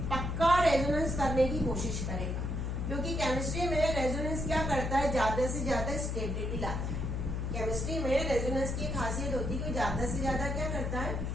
रेजोनेंस करने की कोशिश करेगा, क्योंकि केमिस्ट्री में रेजोनेंस क्या करता है? ज्यादा से ज्यादा स्टेबिलिटी लाता है। केमिस्ट्री में रेजोनेंस की खासियत होती है कि ज्यादा से ज्यादा क्या करता है?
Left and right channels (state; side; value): noise; left; hum, 2 dB below the sound